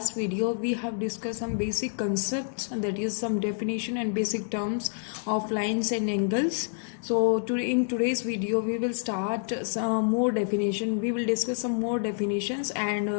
video we have discussed some basic concepts, that is some definition and basic terms of lines and angles. So in today's video we will start some more definition. We will discuss some more definitions and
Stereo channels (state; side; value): silent; right; digital silence